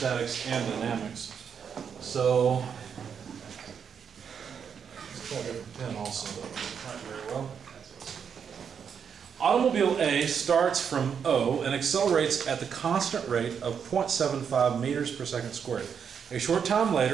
and dynamics. So, let's try a different pen also, though. Not very well. Automobile A starts from O and accelerates at the constant rate of 0.75 meters per second squared. A short time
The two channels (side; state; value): left; quieter; 7.2 dB